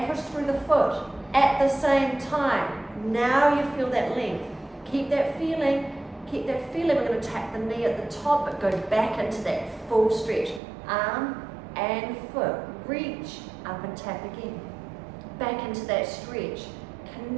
push through the foot at the same time. Now you feel that length. Keep that feeling. Keep that feeling. We're going to tap the knee at the top, but go back into that full stretch. Arm and foot. Reach up and tap again. Back into that stretch.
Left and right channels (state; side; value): drops out; left; at 10.6 s